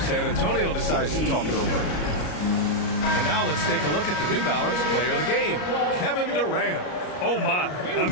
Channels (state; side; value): late; right; 34 ms